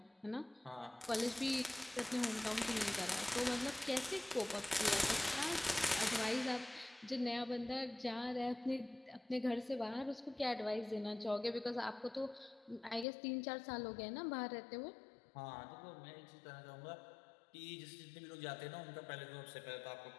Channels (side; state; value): right; drops out; at 13.1 s